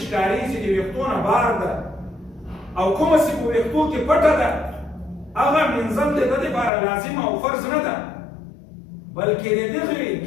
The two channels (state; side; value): drops out; right; at 6.7 s